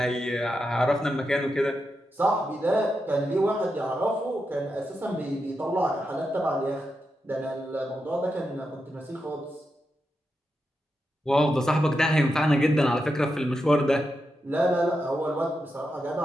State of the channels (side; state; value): both; normal; correlation 0.87